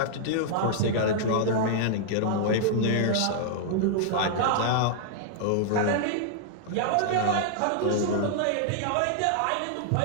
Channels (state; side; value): different; both; correlation -0.01